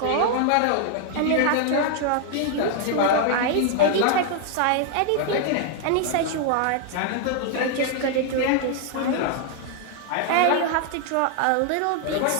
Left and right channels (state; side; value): different; both; correlation 0.00